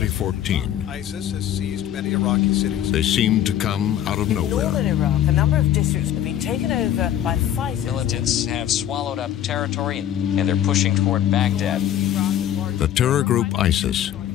ISIS has seized many Iraqi cities. They seemed to come out of nowhere. Northern Iraq, a number of districts have been taken over by fighters. Militants have swallowed up territory and they're pushing toward Baghdad. The terror group ISIS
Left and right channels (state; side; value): quieter; right; 10.9 dB